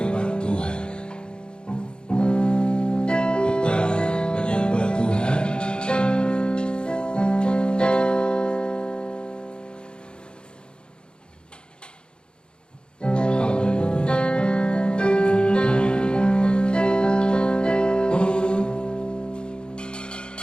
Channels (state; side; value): late; right; 0.051 ms